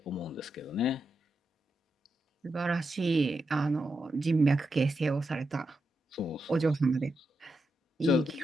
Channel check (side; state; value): both; normal; correlation 0.86